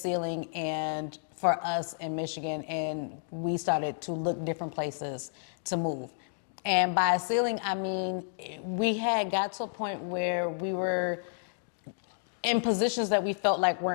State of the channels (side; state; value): right; silent; digital silence